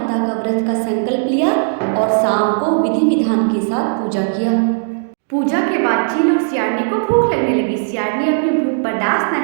का व्रत का संकल्प लिया और शाम को विधि विधान के साथ पूजा किया। पूजा के बाद चील और सियारनी को भूख लगने लगी। सियारनी अपनी भूख बर्दाश्त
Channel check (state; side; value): silent; left; digital silence